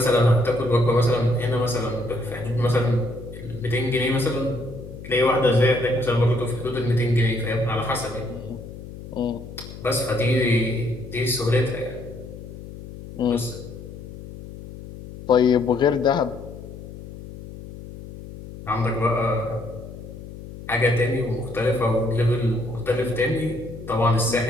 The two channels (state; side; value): noise; left; hum, 13 dB below the sound